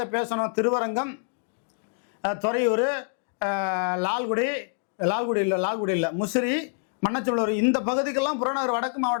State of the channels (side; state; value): right; silent; digital silence